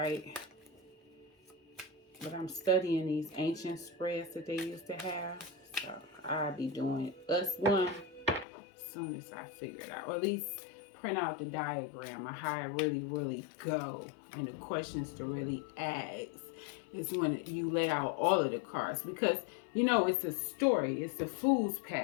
But I'm studying these ancient spreads that they used to have. So I'll be doing us one as soon as I figure it out. Or at least print out the diagram of how it really go. And the questions to really ask is when you lay out all of the cards. Because, you know, it's a story. It's a fool's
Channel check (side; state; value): right; drops out; at 8.5 s